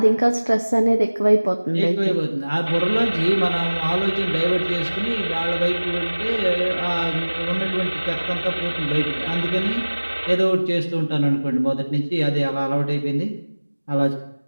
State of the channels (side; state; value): both; inverted; correlation -1.00